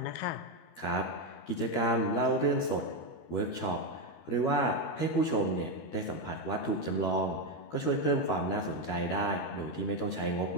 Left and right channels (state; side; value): late; right; 13 ms